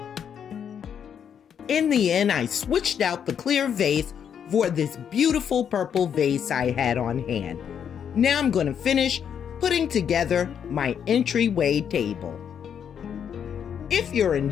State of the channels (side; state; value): right; quieter; 8.2 dB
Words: In the end, I switched out the clear vase for this beautiful purple vase I had on hand. Now I'm going to finish putting together my entryway table. If you're